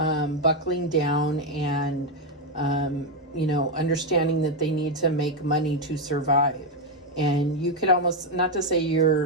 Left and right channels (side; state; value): both; normal; correlation 0.04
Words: down and, understanding that they need to make money to survive. And you could almost, not to say